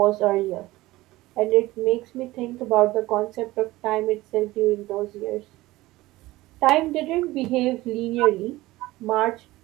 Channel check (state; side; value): quieter; left; 18.4 dB